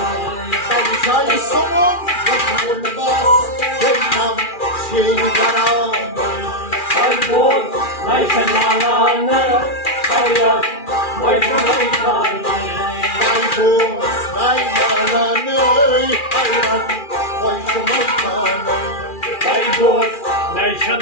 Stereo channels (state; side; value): late; right; 2.4 ms